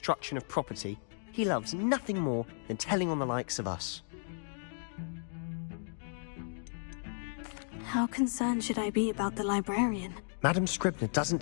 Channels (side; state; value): right; silent; digital silence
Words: of property, he loves nothing more than telling on the likes of us. How concerned should I be about the librarian? Madam Scribner doesn't